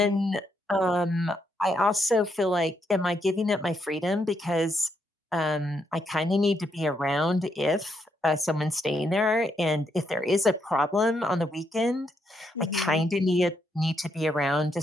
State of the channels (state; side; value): normal; both; correlation 0.78